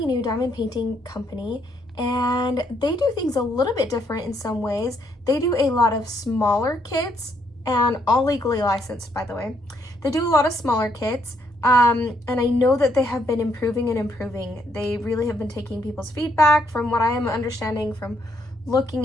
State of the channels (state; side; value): normal; both; correlation 0.72